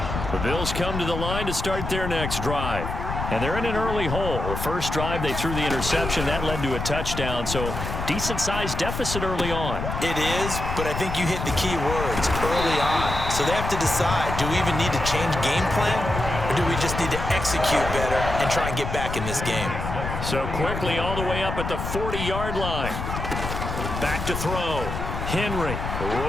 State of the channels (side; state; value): left; noise; rumble, 5 dB below the sound